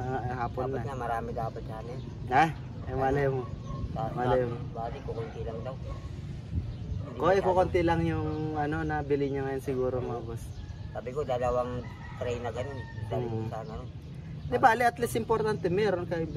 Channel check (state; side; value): identical; both; correlation 1.00